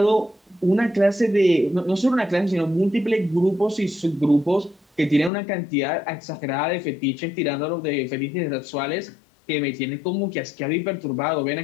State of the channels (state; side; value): drops out; right; at 5.3 s